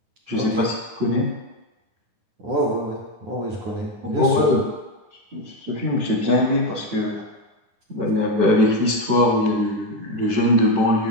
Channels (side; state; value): left; late; 9.7 ms